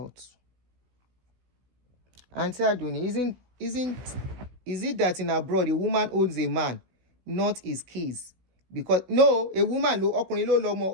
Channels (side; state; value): left; late; 16 ms